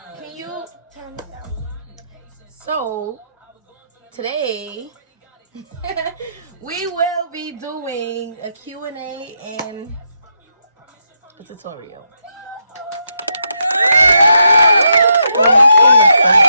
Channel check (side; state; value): both; inverted; correlation -0.80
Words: Can you turn this down? So, today, we will be doing a Q&A and a tutorial.